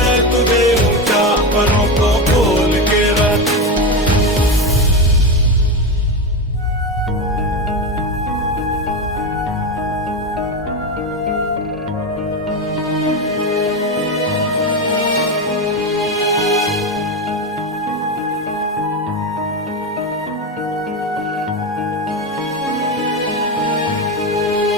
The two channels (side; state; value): both; normal; correlation 0.16